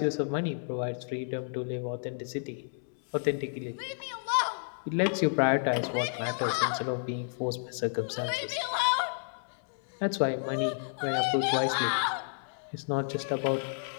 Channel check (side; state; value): right; silent; digital silence